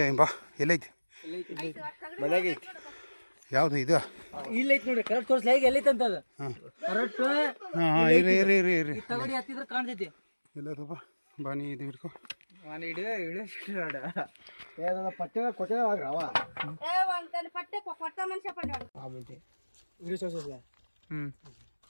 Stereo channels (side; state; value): both; inverted; correlation -1.00